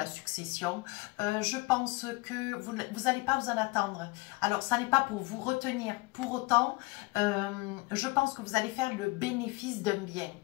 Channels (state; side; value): quieter; right; 23.9 dB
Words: succession. Je pense que vous n'allez pas vous en attendre. Alors, ça n'est pas pour vous retenir. Pour autant, je pense que vous allez faire le bénéfice d'un bien.